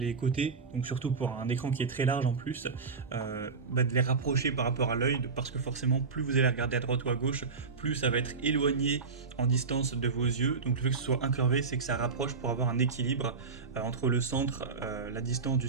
côtés, donc surtout pour un écran qui est très large en plus, de les rapprocher par rapport à l'œil parce que forcément plus vous allez regarder à droite ou à gauche, plus ça va être éloigné en distance de vos yeux. Donc le fait que ce soit incurvé, c'est que ça rapproche pour avoir un équilibre entre le centre, la distance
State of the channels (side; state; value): left; quieter; 4.9 dB